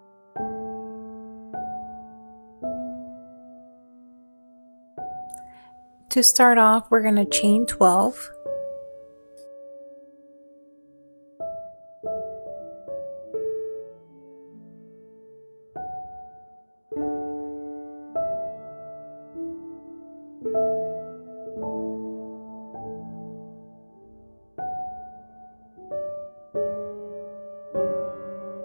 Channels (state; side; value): inverted; both; correlation -1.00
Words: To start off, we're going to chain 12.